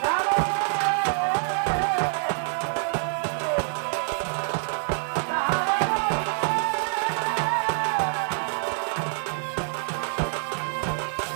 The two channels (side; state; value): left; silent; 61 dB below the other